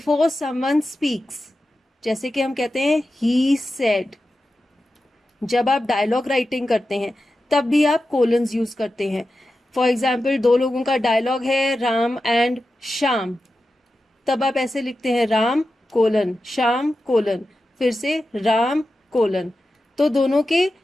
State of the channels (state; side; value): normal; both; correlation 0.92